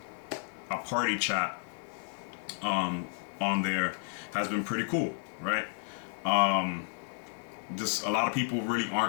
a party chat on there has been pretty cool, right? Just a lot of people really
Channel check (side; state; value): right; silent; 56 dB below the other